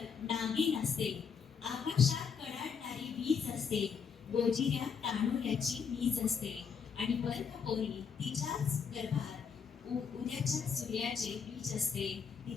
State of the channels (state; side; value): quieter; right; 6.4 dB